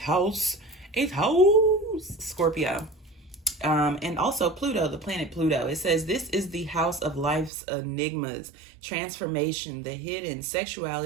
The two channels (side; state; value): left; drops out; at 7.5 s